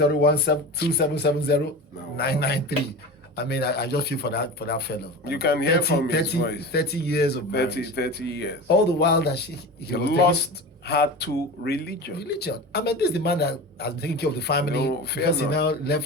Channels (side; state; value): both; normal; correlation 0.31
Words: I mean, I just feel for that fellow. You can hear from his voice. 30 years of marriage. 30 years. All the while that he was lost her to religion. I mean, this is the man that has been taking care of the family. No,